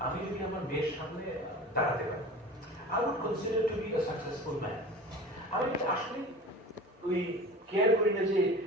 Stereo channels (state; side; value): normal; both; correlation 0.36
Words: আমি যদি আমার মেয়ের সামনে দাঁড়াতে পারি, I would consider to be a successful man. আমি আসলে ওই কেয়ার করি না যে